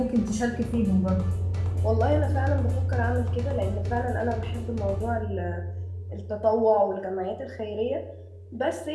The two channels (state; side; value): identical; both; correlation 1.00